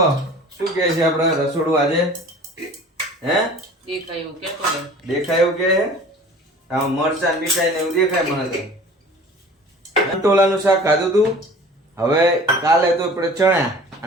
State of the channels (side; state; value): both; normal; correlation 0.44